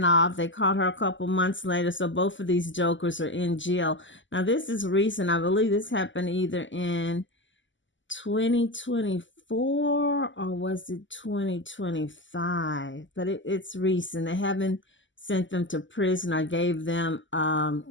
off. They caught her a couple months later. So both of these jokers are in jail. Now, this is recent. I believe this happened either in 2024 or was it 2025? But it's recent. They haven't sent them to prison. I gave them,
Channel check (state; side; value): late; right; 0.55 ms